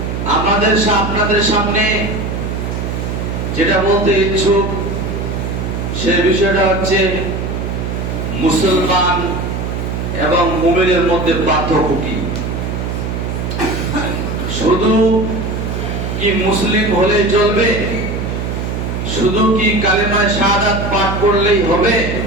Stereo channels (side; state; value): right; noise; hum, 3 dB below the sound